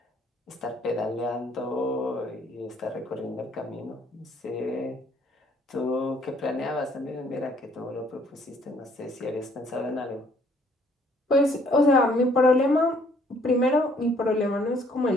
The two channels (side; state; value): both; normal; correlation 0.62